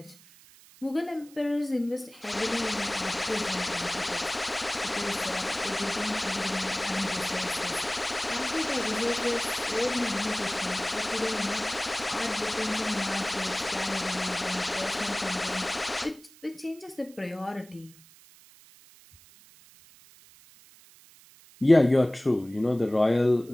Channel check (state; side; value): noise; right; hiss, 24 dB below the sound